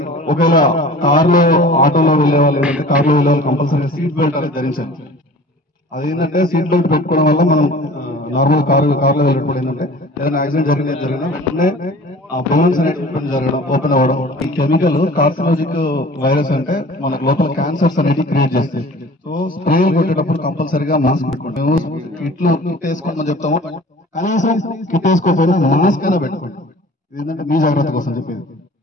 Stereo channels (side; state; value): both; normal; correlation 0.44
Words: ఒకవేళ కార్లో ఆటోలో వెళ్ళే వాళ్ళు ఏంటంటే కార్లో వెళ్ళే వాళ్ళు కంపల్సరీగా సీట్ బెల్ట్ అనేది ధరించండి. అదేంటంటే సీట్ బెల్ట్ పెట్టుకోవడం వల్ల మనం నార్మల్ కార్లో వెళ్ళినప్పుడు ఏంటంటే ఏదైనా యాక్సిడెంట్ జరిగినా వెంటనే ఆ బోన్స్ అనేటువంటి జరగడం, ఓపెన్ అవ్వడం. ఈ కెమికల్ కార్సినోజిక్ వైరస్ అంటే మనకు లోపల క్యాన్సర్స్ అనేది క్రియేట్ చేస్తాయి. సో స్ప్రే కొట్టేటప్పుడు కంపల్సరీగా మాస్క్ పెట్టుకోండి. మేము కిట్ వేసుకోమని చెప్తాము, కనీసం కిట్ వేసుకోకపోయినా మాస్క్ అయినా పెట్టుకోండి. ఏంటంటే మీ జాగ్రత్త కోసం చెప్పేది.